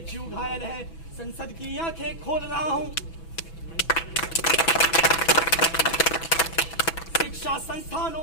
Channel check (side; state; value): right; late; 6.1 ms